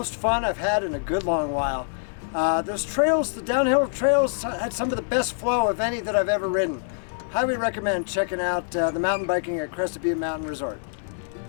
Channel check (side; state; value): right; silent; digital silence